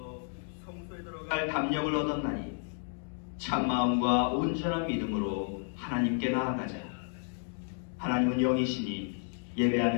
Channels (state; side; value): silent; right; 56 dB below the other